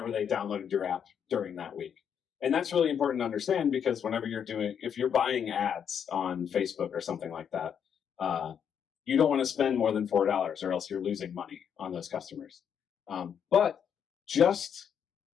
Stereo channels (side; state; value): right; quieter; 8.0 dB